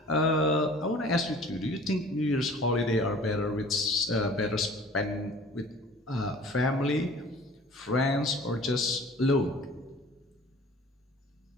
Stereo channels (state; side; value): normal; both; correlation 0.47